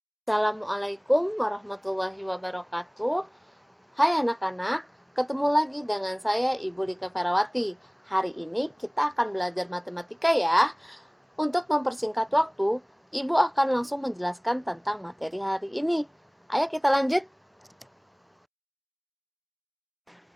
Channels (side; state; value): both; identical; correlation 1.00